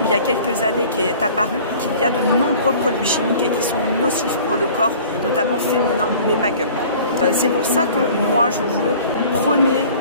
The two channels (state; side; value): inverted; both; correlation -0.47